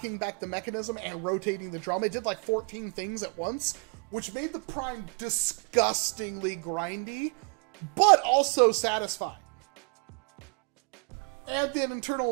back the mechanism and rotating the drum. It did like 14 things at once, which made the prime disgustingly grindy, but also satisfying. And the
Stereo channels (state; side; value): quieter; left; 38.5 dB